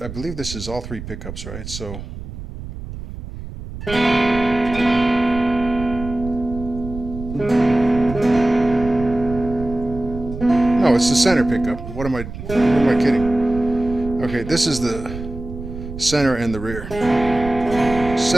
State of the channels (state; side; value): noise; right; rumble, 10 dB below the sound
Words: believe this is all three pickups, right? So no, it's the center pickup. What am I kidding? Okay, this is the center and the rear.